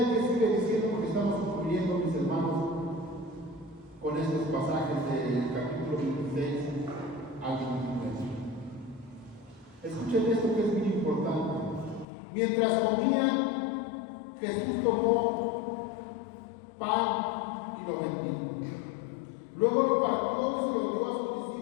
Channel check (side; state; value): right; drops out; at 12.1 s